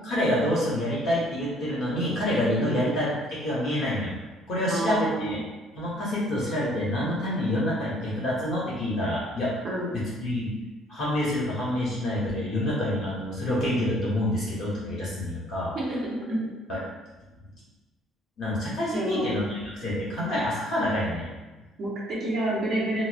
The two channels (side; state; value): both; normal; correlation 0.60